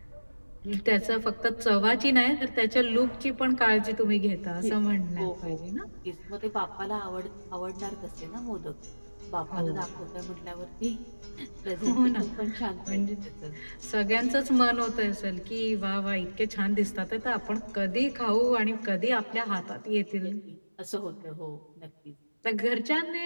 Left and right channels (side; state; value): both; inverted; correlation -1.00